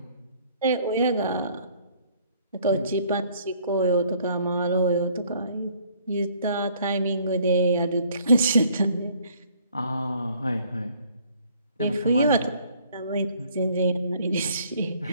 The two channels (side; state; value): both; inverted; correlation -0.60